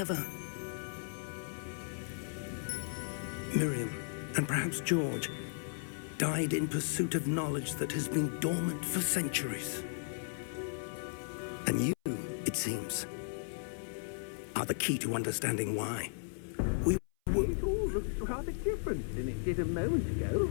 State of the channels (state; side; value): silent; right; 54 dB below the other